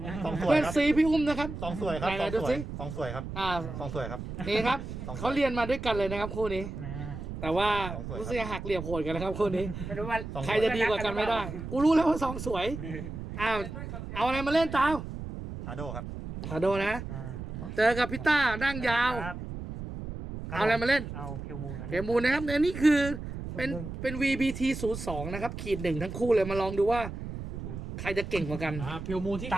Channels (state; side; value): noise; right; rumble, 8 dB below the sound